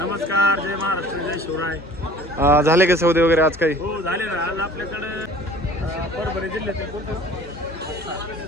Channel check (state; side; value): normal; both; correlation 0.48